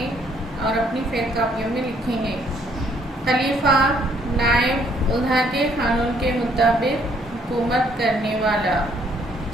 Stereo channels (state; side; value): normal; both; correlation 0.66